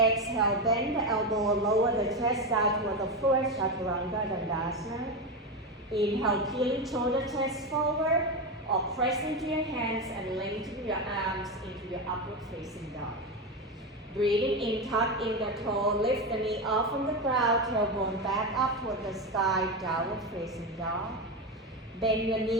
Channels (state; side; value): normal; both; correlation 0.15